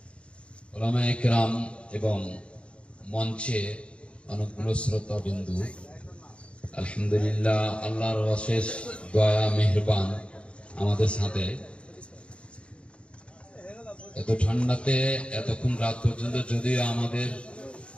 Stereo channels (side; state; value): right; late; 0.059 ms